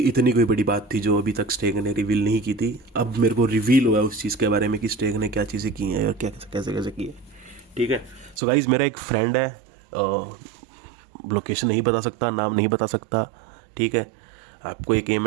इतनी कोई बड़ी बात थी जो अभी तक स्टेक ने रिवील नहीं की थी। अब मेरे को रिवील हुआ उस चीज़ के बारे में कि स्टेक ने क्या चीज़ें की हैं और क्या कैसे कैसे की है। ठीक है। सो गाइज, मेरा एक फ्रेंड है, लोकेशन नहीं बता सकता, नाम नहीं बता सकता। ठीक है। आपको एक एम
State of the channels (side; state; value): left; drops out; at 8.4 s